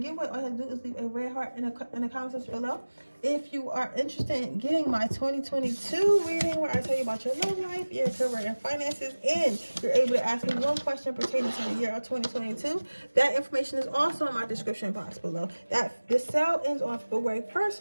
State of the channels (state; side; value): inverted; both; correlation -1.00